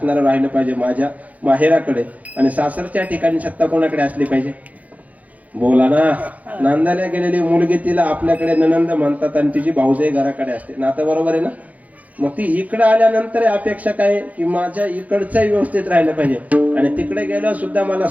राहिलं पाहिजे माझ्या माहेराकडे, आणि सासरच्या ठिकाणी सत्ता कोणाकडे असली पाहिजे? बोला ना. नांदायला गेलेली मुलगी तिला आपल्याकडे ननंद म्हणतात आणि तिची भाऊजाई घराकडे असते. नातं बरोबर आहे ना. मग ती इकडे आल्यानंतर अपेक्षा काय आहे की माझ्या इकडचंही व्यवस्थित राहिलं पाहिजे आणि तिकडे गेल्यावर सुद्धा मला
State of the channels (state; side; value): late; left; 0.073 ms